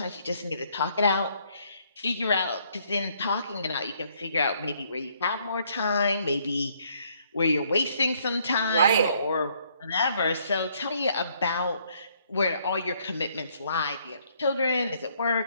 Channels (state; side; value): inverted; both; correlation -0.68